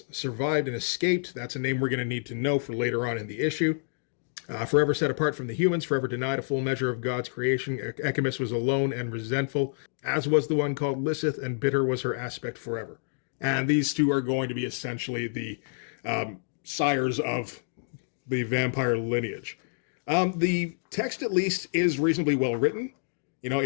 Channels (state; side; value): silent; right; digital silence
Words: survived and escaped. That's a name we're going to need to know for later on in the issue. Forever set apart from the humans, forever denied a full measure of God's creation, Echimus was alone and resentful, as was the one called Lilith, and bitter was her aspect forever. And these two are going to be essentially the sires of the vampire lineage. The text, at least, is reasonably well written.